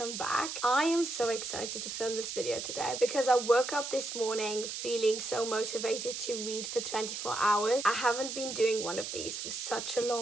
back. I am so excited to film this video today because I woke up this morning feeling so motivated to read for 24 hours. I haven't been doing one of these for such a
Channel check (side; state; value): right; noise; hiss, 6 dB below the sound